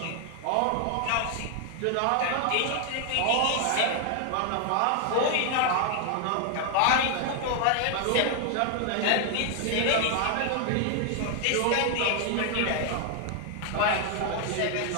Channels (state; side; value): different; both; correlation 0.00